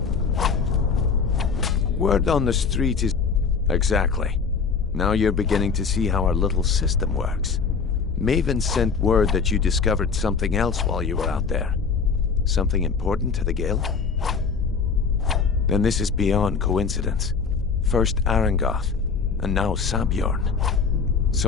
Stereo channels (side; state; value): right; quieter; 5.4 dB